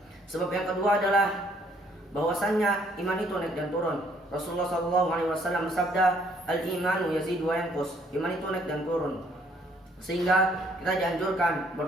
Sebab yang kedua adalah bahwasannya iman itu naik dan turun. Rasulullah sallallahu alaihi wasallam bersabda, "Al-imanu yazidu wa yanqus." Iman itu naik dan turun. Sehingga kita dianjurkan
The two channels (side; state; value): both; normal; correlation 0.65